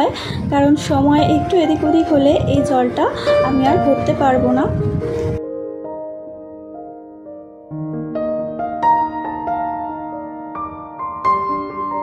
কারণ সময় একটু এদিক ওদিক হলে এই জলটা আমি আর ভরতে পারবো না।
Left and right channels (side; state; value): both; identical; correlation 1.00